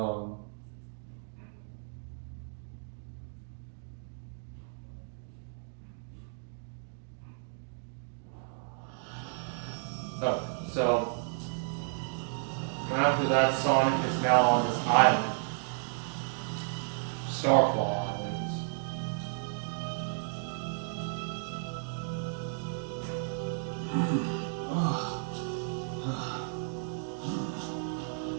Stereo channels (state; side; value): silent; left; digital silence